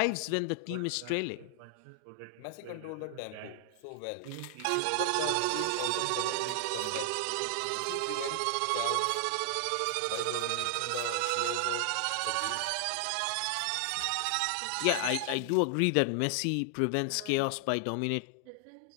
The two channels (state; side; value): different; both; correlation 0.00